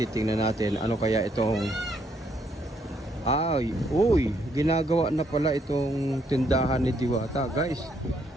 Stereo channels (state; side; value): normal; both; correlation 0.72